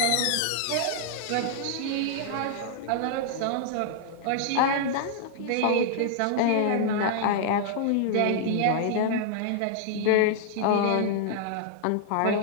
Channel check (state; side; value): different; both; correlation -0.01